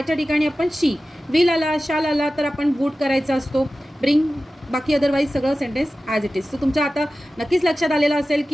ठिकाणी आपण शी. विल आला, शाल आला तर आपण वूड करायचा असतो. ब्रिंग. बाकी अदरवाईज सगळं sentence as it is. So तुमच्या आता नक्कीच लक्षात आलेलं असेल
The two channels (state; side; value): normal; both; correlation 0.95